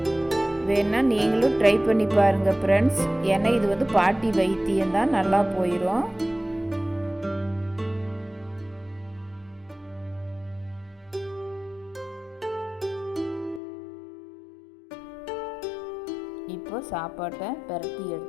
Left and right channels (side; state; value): right; drops out; at 13.6 s